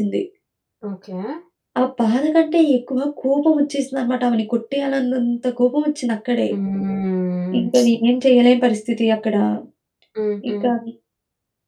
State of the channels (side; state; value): both; identical; correlation 1.00